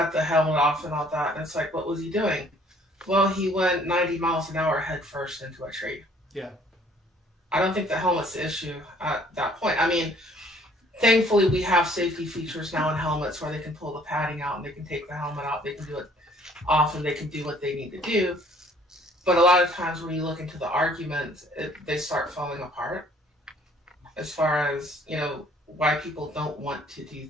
the helmet off and all that. And it's like, what was he doing? Well, he went 90 miles an hour head first into a tree. Yeah. I don't think the helmet's the issue at that point. I mean, thankfully, we have safety features now in helmets where they can pull the padding out and they can take the helmet out, they can do it off, and they can do what they need to do. But a lot of times when you look into the arguments, they start falling apart as far as, you know, why people don't want to do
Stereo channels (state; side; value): normal; both; correlation 0.59